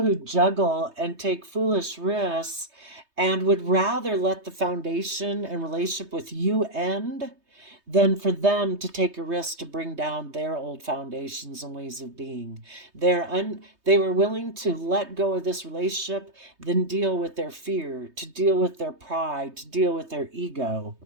who juggle and take foolish risks and would rather let the foundation and relationship with you end than for them to take a risk to bring down their old foundations and ways of being. They were willing to let go of this relationship than deal with their fear, to deal with their pride, to deal with their ego.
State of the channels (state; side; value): late; left; 3.2 ms